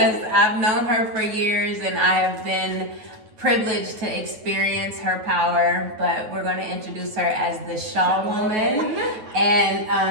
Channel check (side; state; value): left; late; 9.3 ms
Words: I've known her for years and I have been privileged to experience her power, but we're going to introduce her as the Shaw Woman,